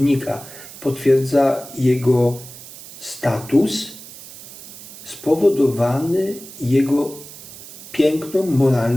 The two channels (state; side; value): noise; right; hiss, 16 dB below the sound